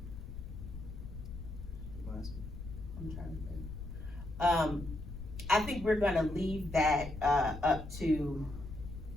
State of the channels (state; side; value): noise; left; rumble, 10 dB below the sound